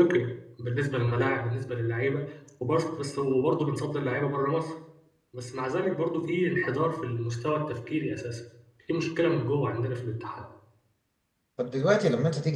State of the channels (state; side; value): identical; both; correlation 1.00